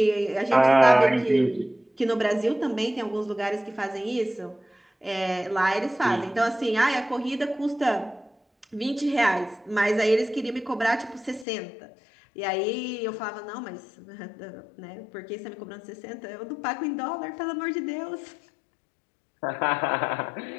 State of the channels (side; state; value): right; drops out; at 11.5 s